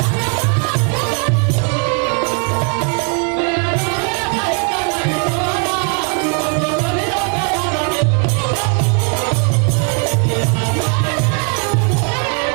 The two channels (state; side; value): quieter; left; 37.7 dB